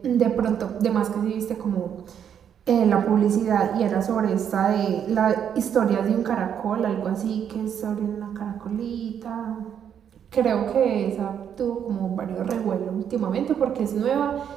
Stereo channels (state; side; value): quieter; left; 8.6 dB